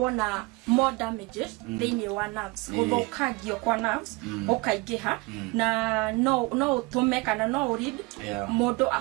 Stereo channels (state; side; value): quieter; left; 24.9 dB